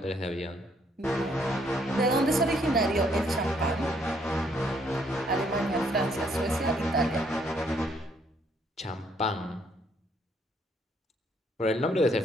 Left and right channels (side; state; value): both; normal; correlation 0.69